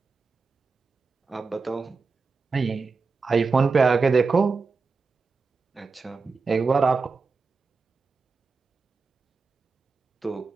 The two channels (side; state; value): left; quieter; 4.5 dB